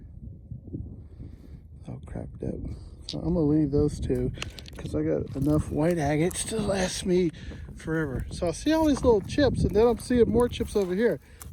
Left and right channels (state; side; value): identical; both; correlation 1.00